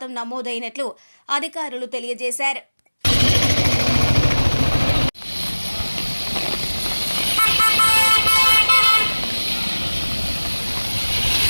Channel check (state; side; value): inverted; both; correlation -1.00